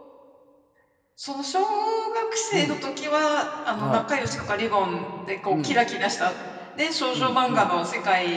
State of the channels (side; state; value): both; identical; correlation 1.00